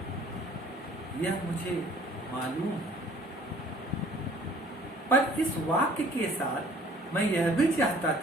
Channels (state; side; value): normal; both; correlation 0.54